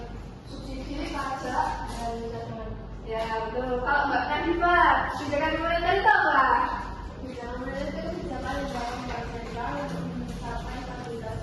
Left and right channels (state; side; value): identical; both; correlation 1.00